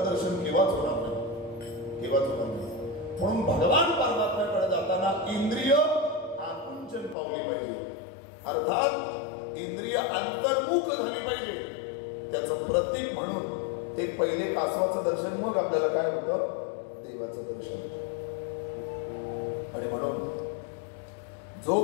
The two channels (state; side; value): drops out; right; at 7.2 s